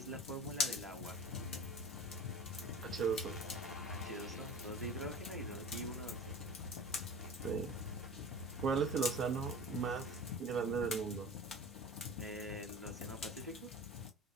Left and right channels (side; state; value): both; normal; correlation 0.38